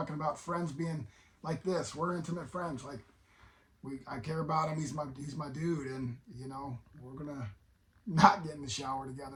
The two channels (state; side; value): identical; both; correlation 1.00